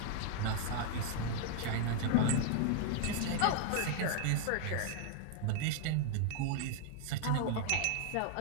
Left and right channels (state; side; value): different; both; correlation 0.00